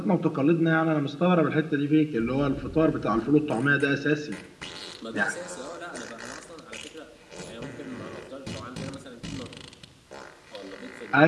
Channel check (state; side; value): identical; both; correlation 1.00